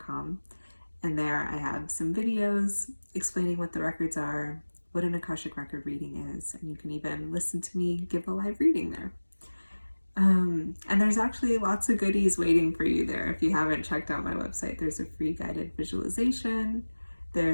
and there I have some videos explaining what the records are, what an Akashic Record reading is, and you can even listen to me give a live reading there. And there's actually lots of goodies waiting for you there. If you haven't checked out my website, there's a free guided visualization,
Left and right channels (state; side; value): inverted; both; correlation -1.00